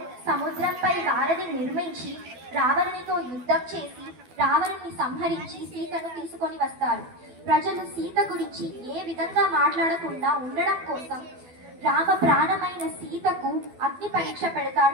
సముద్రంపై వారధి నిర్మించి రావణునితో యుద్ధం చేసి రావణుని సంహరించి సీతను తీసుకొని వస్తారు. ప్రజలు సీత గురించి ఏ విధంగా మాట్లాడకుండా ఉండడం కోసం రామ ప్రాణమైన సీతకు అగ్ని పరీక్ష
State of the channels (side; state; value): left; late; 12 ms